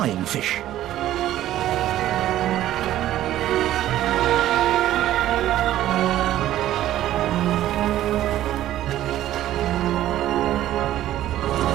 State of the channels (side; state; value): left; quieter; 13.3 dB